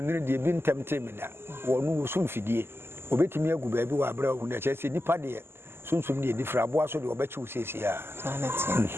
de bi ntemte me da wonu wo sumfidie obetimi agu ba bi wa abra hu na eche se nipa de sunsum de difra abo aso de obechi wo sesi a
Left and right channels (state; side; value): late; left; 0.12 ms